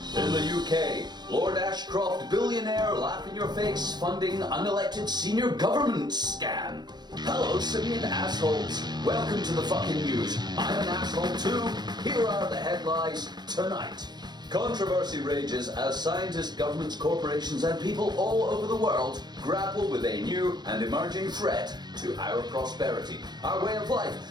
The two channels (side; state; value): left; late; 0.21 ms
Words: In the UK, Lord Ashcroft, billionaire, laugh in your face, funding unelected senior government scam. Hello, simian assholes. Welcome to the FKN Newz. I'm an asshole too. Here are the headlines tonight. Controversy rages as scientists, governments, corporations, and people all over the world grapple with a new and emerging threat to our prosperity, our way of